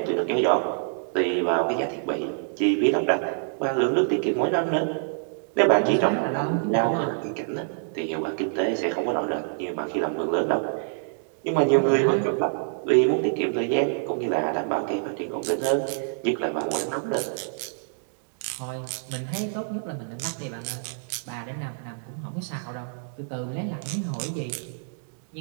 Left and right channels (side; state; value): left; silent; digital silence